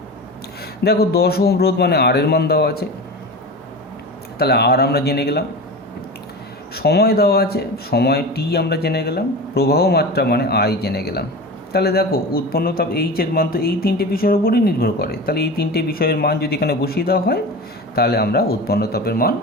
দেখো 10 ওহম রোধ মানে আর এর মান দেওয়া আছে, তাহলে আর আমরা জেনে গেলাম। সময় দেওয়া আছে, সময় টি আমরা জেনে গেলাম। প্রবাহ মাত্রা মানে আই জেনে গেলাম। তাহলে দেখো উৎপন্ন তাপ এইচের মান তো এই তিনটে বিষয়ের উপরই নির্ভর করে। তাহলে এই তিনটে বিষয়ের মান যদি এখানে বসিয়ে দেওয়া হয় তাহলে আমরা উৎপন্ন তাপের মান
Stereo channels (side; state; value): both; normal; correlation 0.29